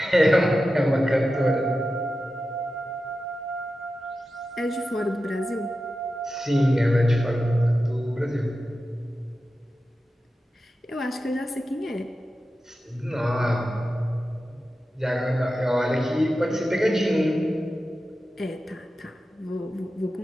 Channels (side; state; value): both; normal; correlation 0.92